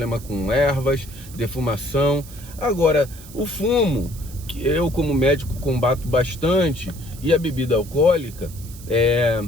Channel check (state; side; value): noise; right; hiss, 18 dB below the sound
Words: com ervas, defumação. Agora, o fumo, que eu como médico combato bastante, e a bebida alcoólica,